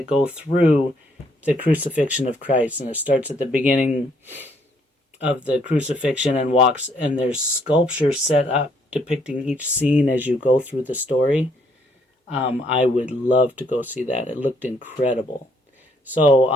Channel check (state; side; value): normal; both; correlation 0.68